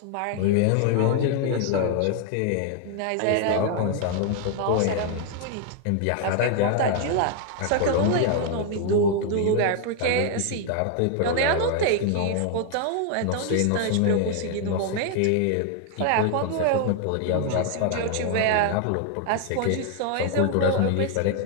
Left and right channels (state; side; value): different; both; correlation 0.00